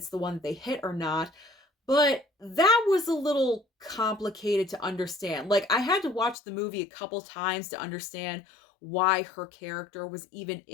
the one that they hit or not, but that was a little complicated to understand. Like, I had to watch the movie a couple times to understand why her character was even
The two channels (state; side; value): drops out; right; at 6.4 s